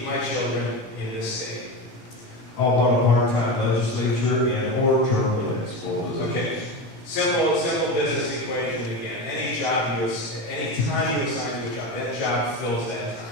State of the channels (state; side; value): late; right; 18 ms